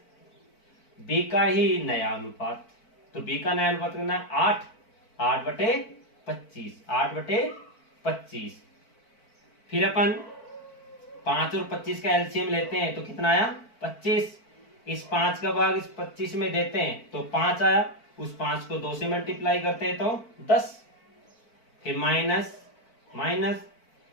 बी का ही नया अनुपात, तो बी का नया अनुपात कितना है 8, 8/25, 8/25। फिर अपन 5 और 25 का एलसीएम लेते हैं तो कितना आया 25, इस 5 का भाग इस 25 में देते हैं तो 5 आया, उस 5 को 2 से मल्टीप्लाई करते हैं तो 10, फिर माइनस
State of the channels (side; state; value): right; late; 4.5 ms